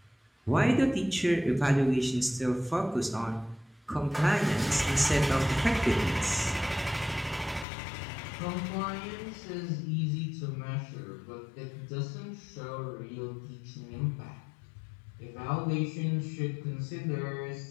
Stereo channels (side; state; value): right; drops out; at 7.7 s